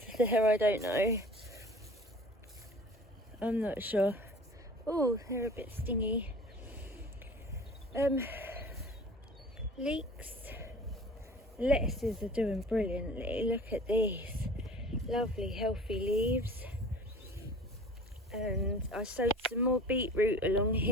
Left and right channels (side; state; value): both; normal; correlation 0.43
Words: there? I don't know. I'm not sure. Oh, they're a bit stingy. Leeks. Lettuces are doing brilliantly. Look at these lovely healthy leaves. And I sowed some more beetroot along